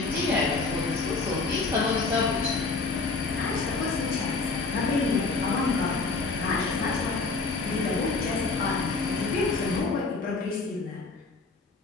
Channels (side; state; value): right; quieter; 4.0 dB